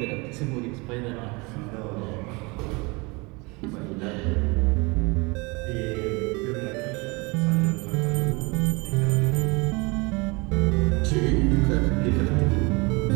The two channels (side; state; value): left; quieter; 27.1 dB